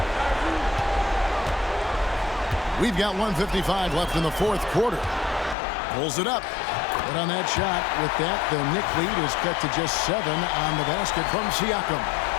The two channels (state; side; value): drops out; right; at 5.6 s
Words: We've got 1:55 left in the 4th quarter. Pulls it up. But on that shot, with that, the Knick lead is cut to just 7 on the basket from Siakam.